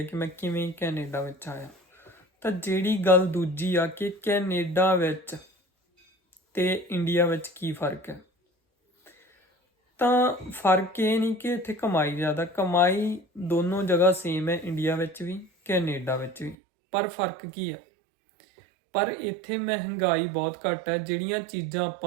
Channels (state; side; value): drops out; left; at 16.6 s